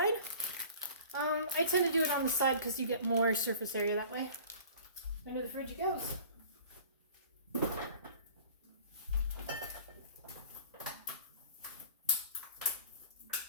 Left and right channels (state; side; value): inverted; both; correlation -0.45